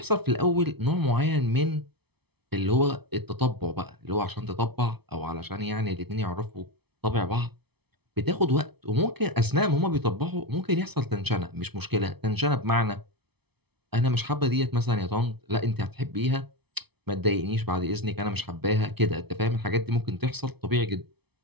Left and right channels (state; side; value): late; left; 0.98 ms